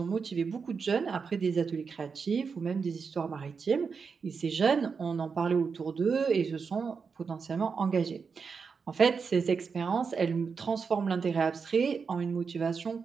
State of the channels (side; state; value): left; quieter; 5.5 dB